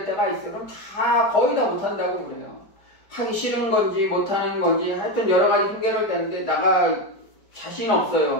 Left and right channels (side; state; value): right; late; 4.9 ms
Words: 때가 있어요. 그럼 다 거의 다 못한다고 그래요. 하기 싫은 건지 못하는 건지 하여튼 여러 가지 핑계를 대는데 나가 자신